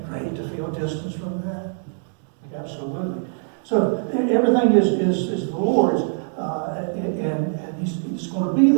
great to feel distance from that? Absolutely. So everything is the Lord's, and He's going to be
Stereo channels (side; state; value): left; silent; 63 dB below the other